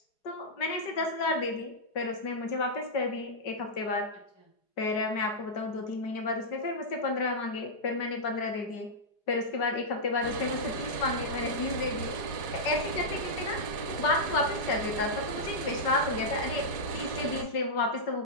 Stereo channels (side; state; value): right; late; 4.8 ms